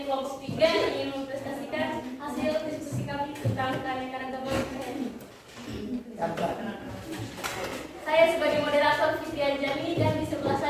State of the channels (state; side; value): identical; both; correlation 1.00